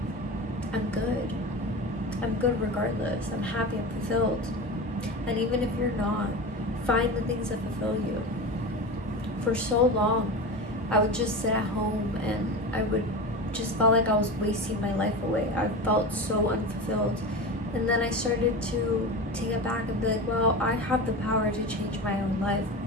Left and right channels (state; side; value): normal; both; correlation 0.27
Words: I'm good. I'm good regardless. I'm happy, I'm fulfilled. And even if you're not, find the things that fulfill you. For so long, I would just sit at home and I would just felt like I was wasting my life away. I felt so unfulfilled. And then I started to take it back and be like, well, I have the power to change my own life.